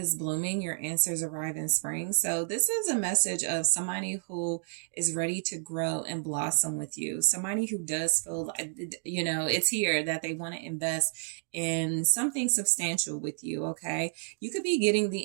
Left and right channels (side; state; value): left; silent; digital silence